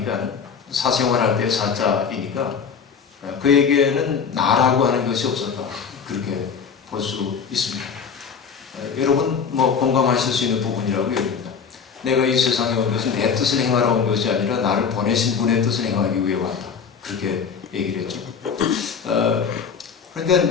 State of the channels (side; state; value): right; quieter; 6.3 dB